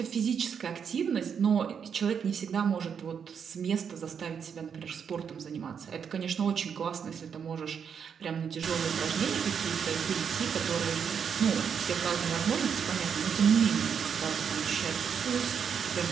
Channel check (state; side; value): quieter; left; 7.1 dB